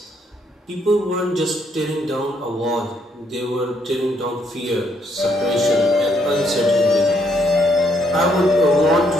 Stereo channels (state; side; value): normal; both; correlation 0.72